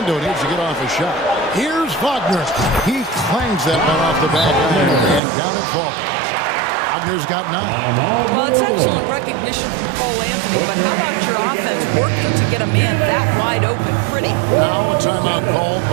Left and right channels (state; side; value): drops out; left; at 5.2 s